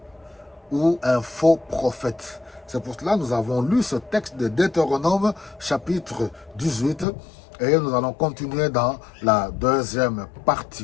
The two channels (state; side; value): drops out; right; at 7.1 s